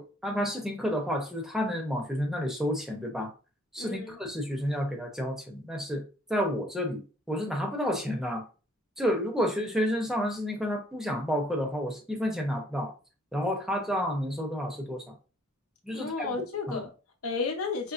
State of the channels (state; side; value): normal; both; correlation 0.61